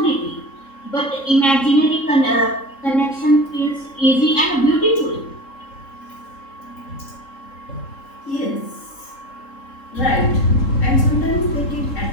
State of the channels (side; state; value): right; late; 3.7 ms